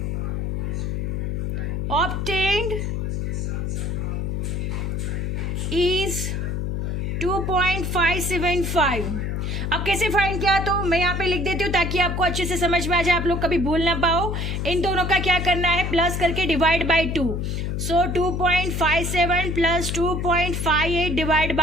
obtained is 2.575। अब कैसे फाइंड किया, तो मैं यहाँ पे लिख देती हूँ ताकि आपको अच्छे से समझ में आ जाए, आप लोग कभी भूल ना पाओ। इन दोनों का क्या करना है, प्लस करके divide by 2। So 2.57 plus 2.58 divide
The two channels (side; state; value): left; noise; hum, 1 dB below the sound